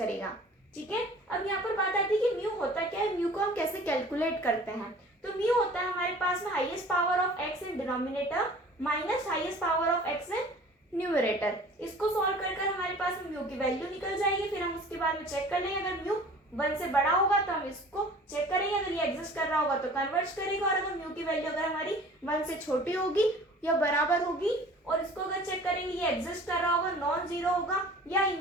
ठीक है। अब यहाँ पर बात आती है कि म्यू होता क्या है, म्यू को हम कैसे कैलकुलेट करते हैं। तो म्यू होता है हमारे पास में highest power of x in denominator minus highest power of x in numerator. इसको सॉल्व कर कर हमारे पास म्यू की वैल्यू निकल जाएगी, फिर हम उसके बाद में चेक कर लेंगे, अगर म्यू 1 से बड़ा होगा तो हम इसको चेक करेंगे, अगर ये एग्जिस्ट कर रहा होगा तो कन्वर्ज करेगा, और अगर म्यू की वैल्यू अगर हमारी 1 से छोटी होगी या बराबर होगी और इसको अगर चेक करेंगे ये एग्जिस्ट कर रहा होगा, नॉन जीरो होगा या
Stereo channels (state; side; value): normal; both; correlation 0.46